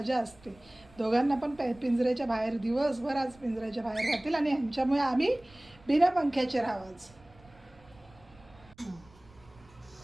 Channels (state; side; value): noise; right; rumble, 26 dB below the sound